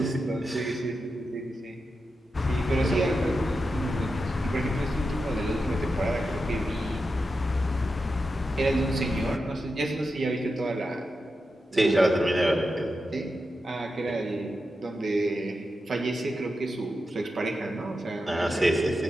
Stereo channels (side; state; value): both; normal; correlation 0.89